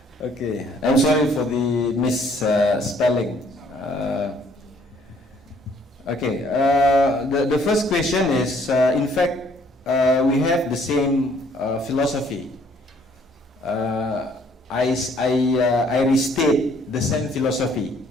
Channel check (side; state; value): both; normal; correlation 0.62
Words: Okay. I'm sorry for the misspelling. The first question is, in fact, we have the same philosophy. I restate the same philosophy,